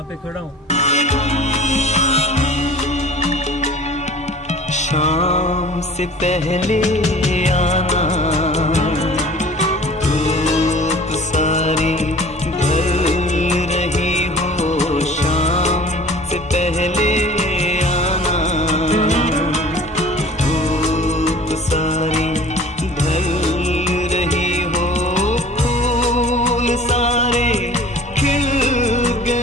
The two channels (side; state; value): both; normal; correlation 0.45